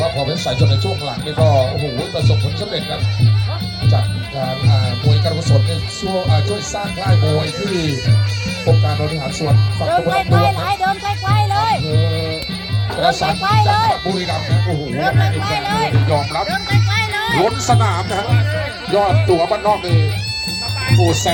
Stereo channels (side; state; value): both; identical; correlation 1.00